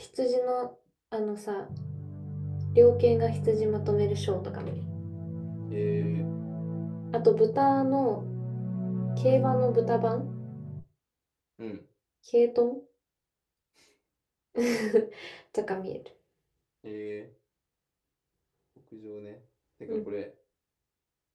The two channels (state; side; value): identical; both; correlation 1.00